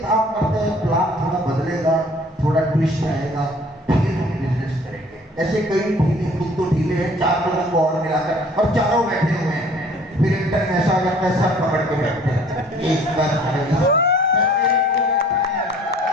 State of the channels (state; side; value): normal; both; correlation 0.54